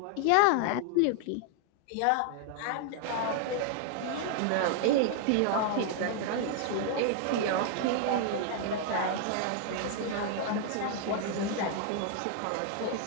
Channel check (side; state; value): both; different; correlation 0.00